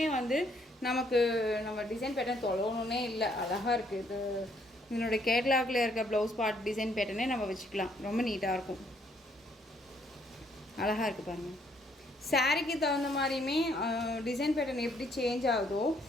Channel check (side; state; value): both; normal; correlation 0.68